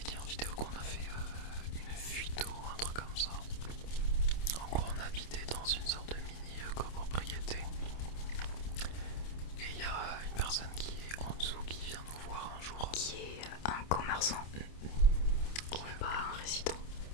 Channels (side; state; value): right; late; 27 ms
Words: dit en vidéo qu'on a fait une fuite ou un truc comme ça. En gros, on habitait dans une sorte de mini copropriété. Et il y a une personne qui est en dessous qui vient nous voir un jour. Qui est un commerçant, qui n'est pas un résident.